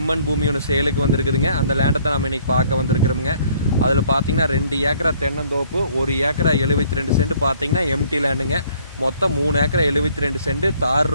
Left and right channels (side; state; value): both; inverted; correlation -0.61